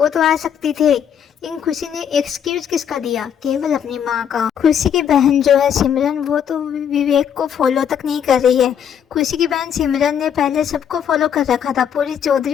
तो आ सकती थे। लेकिन खुशी ने एक्सक्यूज किसका दिया? केवल अपनी माँ का। खुशी की बहन जो है सिमरन, वो तो विवेक को फॉलो तक नहीं कर रही है। खुशी की बहन सिमरन ने पहले सबको फॉलो कर रखा था, पूरी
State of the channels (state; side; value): quieter; right; 8.6 dB